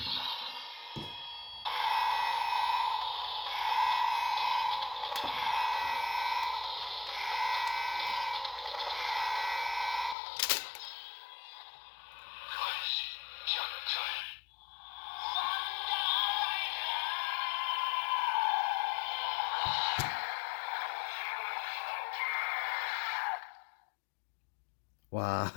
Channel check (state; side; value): drops out; right; at 10.2 s